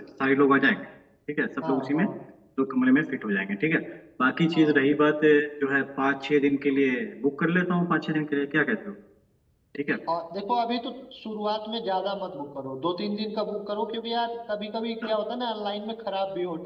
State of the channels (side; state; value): both; identical; correlation 1.00